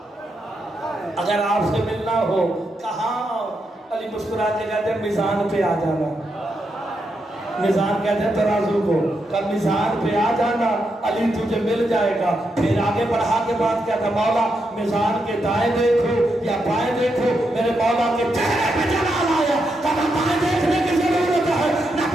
اگر آپ سے ملنا ہو کہاں علی مسکرا کے کہتے ہیں میزان پہ آ جانا میزان کہتے ہیں ترازو کو کہ میزان پہ آ جانا علی تجھے مل جائے گا پھر آگے بڑھا کے بات کہتا مولا میزان کے دائیں دیکھو یا بائیں دیکھو میرے مولا کے چہرے پہ جلال آیا کہ نہ بائیں دیکھنے کی ضرورت ہے نہ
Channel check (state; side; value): normal; both; correlation 0.83